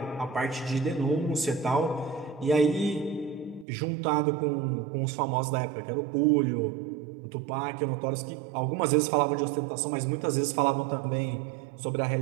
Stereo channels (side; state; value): left; drops out; at 3.7 s